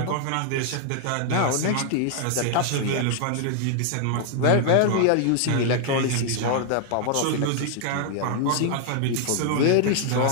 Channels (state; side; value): different; both; correlation 0.00